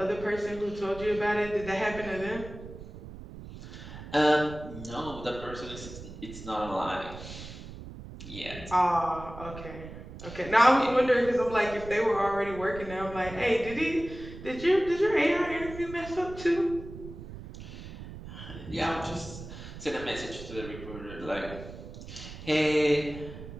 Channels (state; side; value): noise; right; rumble, 13 dB below the sound